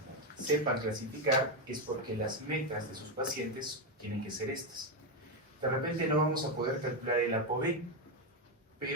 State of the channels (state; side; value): normal; both; correlation 0.07